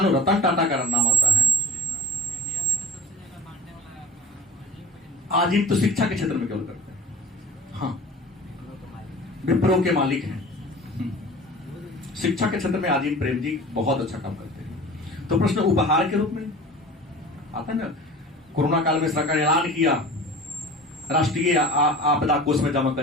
रतन टाटा का नाम आता है। आजीम तो शिक्षा के क्षेत्र में केवल करते हैं, हाँ, विप्रो के मालिक हैं। शिक्षा के क्षेत्र में आजीम प्रेम जी बहुत अच्छा काम करते हैं। तो प्रश्न उपहार के रूप में आता है ना। कोरोना काल में सरकार ने ऐलान किया राष्ट्रीय आपदा कोष में जमा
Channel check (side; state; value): both; normal; correlation 0.40